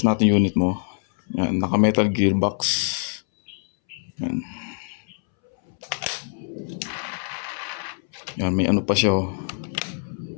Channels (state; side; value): silent; right; 62 dB below the other